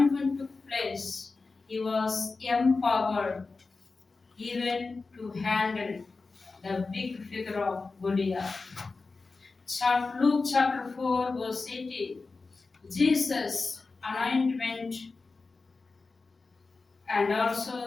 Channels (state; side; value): quieter; right; 4.0 dB